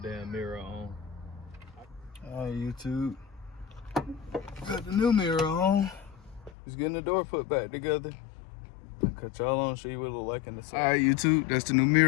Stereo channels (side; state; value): right; drops out; at 6.6 s